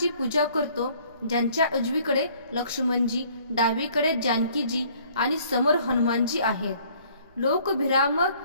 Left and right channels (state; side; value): inverted; both; correlation -0.58